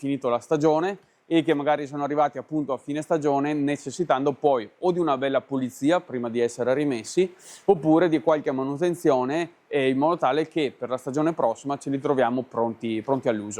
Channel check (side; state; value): both; identical; correlation 1.00